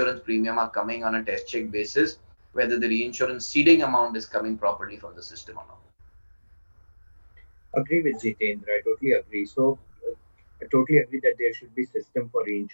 premium are coming on a test check basis, whether the reinsurance ceding amount is coming properly from the system or not. Agree with Jitendra. I totally agree. I totally agree that there should be system for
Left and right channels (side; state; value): both; inverted; correlation -1.00